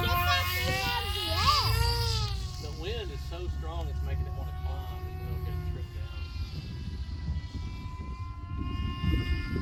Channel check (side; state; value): both; identical; correlation 1.00